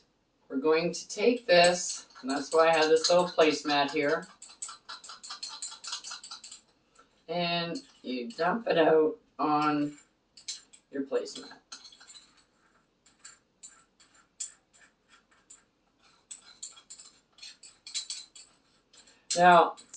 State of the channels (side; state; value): both; identical; correlation 1.00